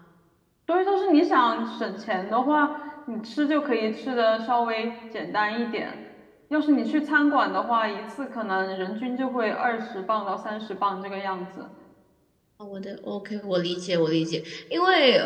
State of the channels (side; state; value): both; identical; correlation 1.00